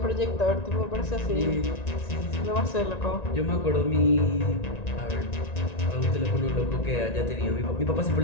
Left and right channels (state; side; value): late; right; 1.9 ms